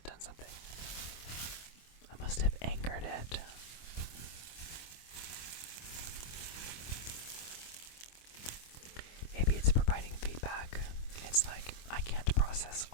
done something. I must have anchored it. Maybe it's providing feedback. It's like I can't process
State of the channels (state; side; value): late; right; 25 ms